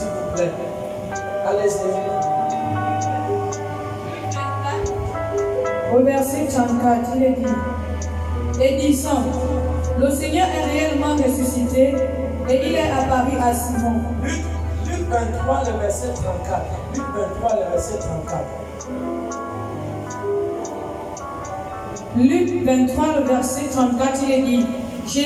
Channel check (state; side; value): identical; both; correlation 1.00